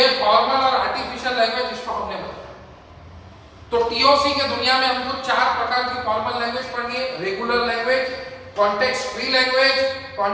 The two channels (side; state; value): both; identical; correlation 1.00